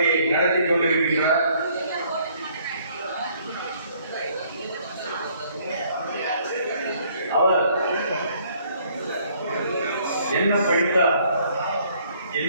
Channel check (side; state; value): both; inverted; correlation -0.63